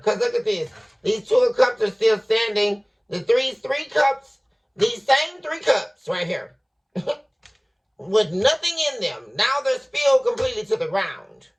Because look at this. These 2 of Cups are still standing. The three cups, these same 3 cups right here. With nothing in them. Now they're spilled completely to the ground.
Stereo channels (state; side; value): identical; both; correlation 1.00